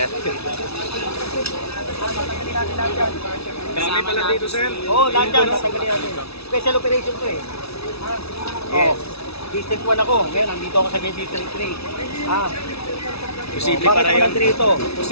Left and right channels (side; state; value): right; late; 0.78 ms